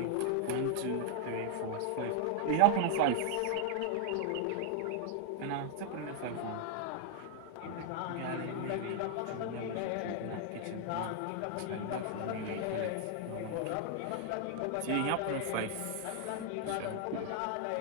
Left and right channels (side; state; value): both; different; correlation 0.00